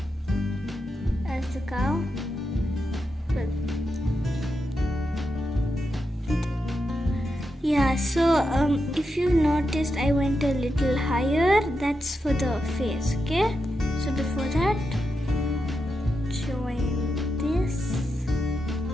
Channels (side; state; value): both; normal; correlation 0.87